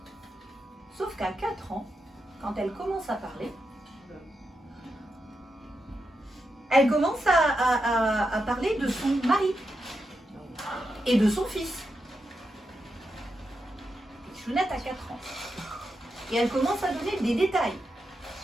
Sauf qu'à 4 ans, quand elle commence à parler, elle commence à parler de son mari et de son fils. Chounette a 4 ans. Et elle commence à donner des détails.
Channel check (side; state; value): both; normal; correlation 0.86